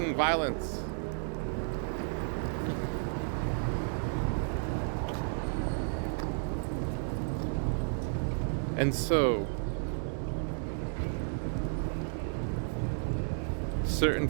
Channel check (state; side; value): silent; left; 56 dB below the other